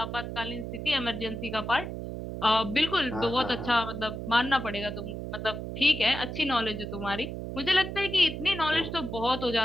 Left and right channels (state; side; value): noise; right; hum, 6 dB below the sound